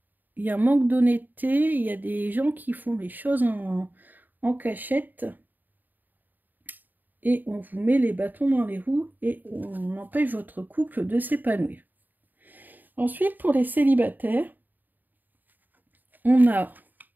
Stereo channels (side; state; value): left; late; 0.088 ms